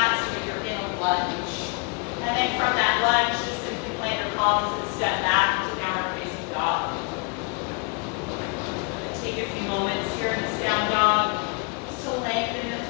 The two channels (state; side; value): quieter; right; 35.7 dB